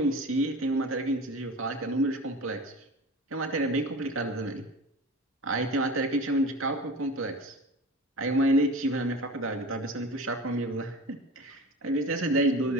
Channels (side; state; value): both; normal; correlation 0.34